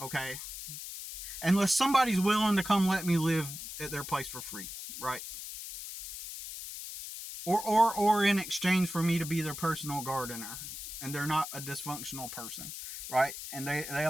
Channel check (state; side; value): noise; left; hiss, 9 dB below the sound